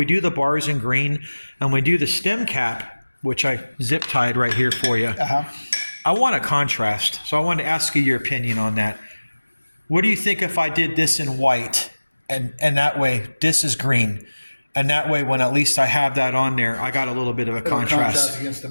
do the bars in green and we do the stem cap, which I zip tied right here for you, I want a contrast. So I wanted to ask you your opinion on that. What do you think if I did this in white? And that way, this is green. And that way, when at least I have that on there, I got a little bit of a contrast. Against the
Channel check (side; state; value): both; inverted; correlation -1.00